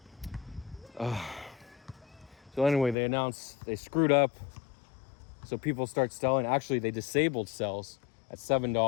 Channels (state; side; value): drops out; right; at 3.0 s